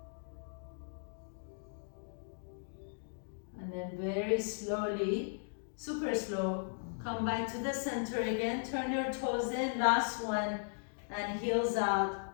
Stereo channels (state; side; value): silent; right; digital silence